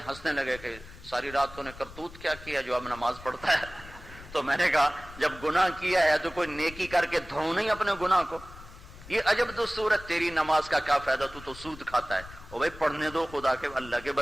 ہنسنے لگے کہ ساری رات تو نے کرتوت کیا کیا جو اب نماز پڑھتا ہے. تو میں نے کہا جب گناہ کیا ہے تو کوئی نیکی کر کے دھو نہیں اپنے گناہ کو. یہ عجب دستور ہے، تیری نماز کا کیا فائدہ، تو سود کھاتا ہے. او بھائی پڑھنے دو خدا کے اللہ کے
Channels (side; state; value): left; noise; rumble, 17 dB below the sound